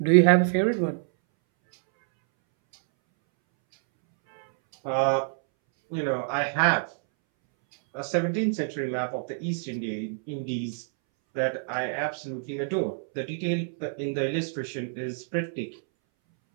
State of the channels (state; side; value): silent; left; 60 dB below the other